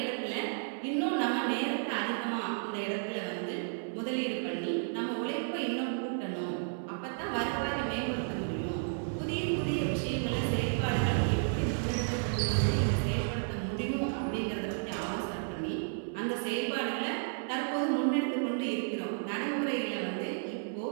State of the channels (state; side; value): silent; left; 56 dB below the other